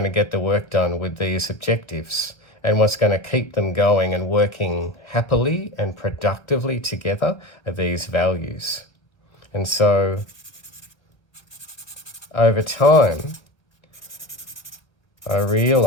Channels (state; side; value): late; right; 1.1 ms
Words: to get the work done with these objectives, and what's going to keep them going and working happily and productively together are these values. And so over time, I